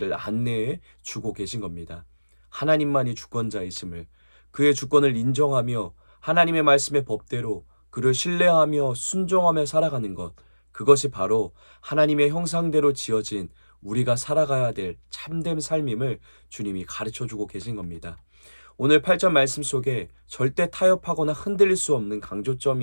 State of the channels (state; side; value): inverted; both; correlation -1.00